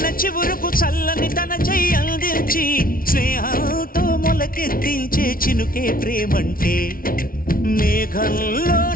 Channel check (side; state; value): right; late; 0.42 ms